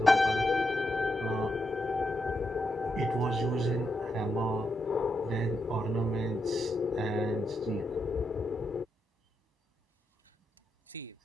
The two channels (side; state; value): both; normal; correlation 0.83